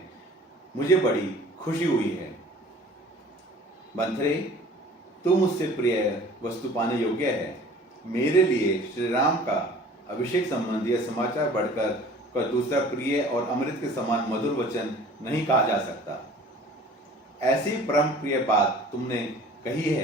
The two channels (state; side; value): normal; both; correlation 0.47